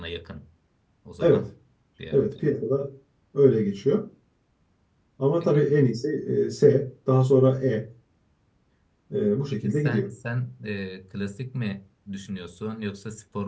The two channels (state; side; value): identical; both; correlation 1.00